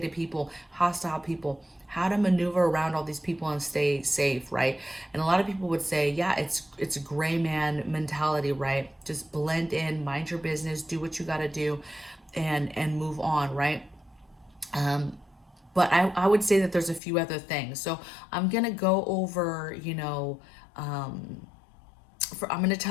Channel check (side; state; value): right; drops out; at 17.0 s